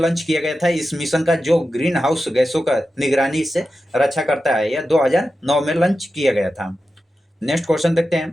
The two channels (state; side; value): normal; both; correlation 0.91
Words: किया गया था। इस मिशन का जो ग्रीन हाउस गैसों का निगरानी से रक्षा करता है, यह 2009 में लॉन्च किया गया था। नेक्स्ट क्वेश्चन देखते